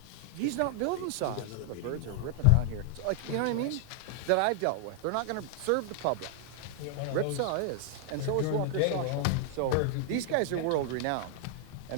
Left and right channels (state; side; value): different; both; correlation 0.00